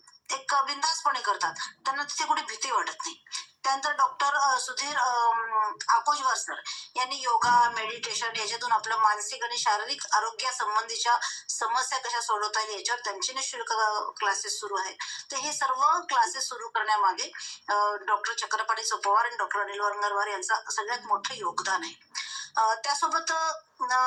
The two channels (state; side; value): identical; both; correlation 1.00